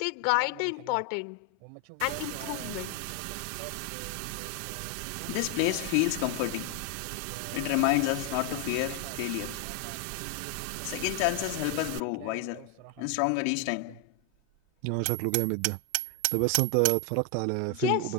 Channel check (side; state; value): both; different; correlation 0.01